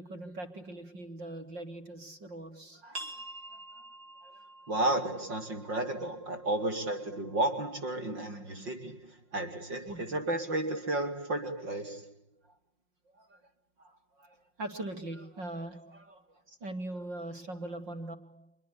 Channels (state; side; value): late; left; 5.6 ms